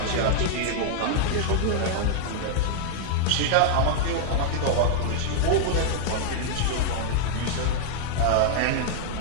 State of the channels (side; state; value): both; different; correlation -0.01